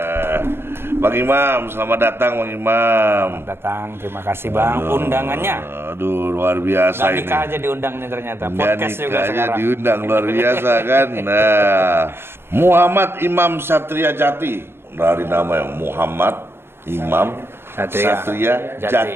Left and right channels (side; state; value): left; late; 0.11 ms